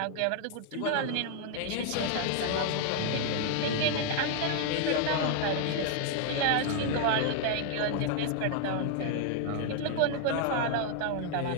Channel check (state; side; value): different; both; correlation 0.00